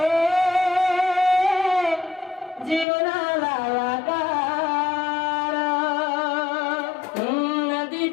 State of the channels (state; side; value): drops out; right; at 2.9 s